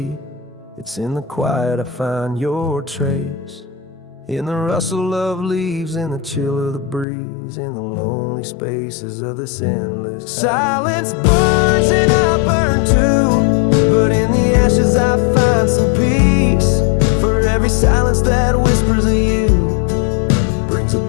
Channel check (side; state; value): right; drops out; at 7.1 s